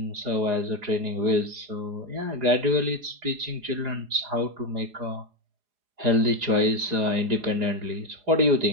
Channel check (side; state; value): left; late; 4.8 ms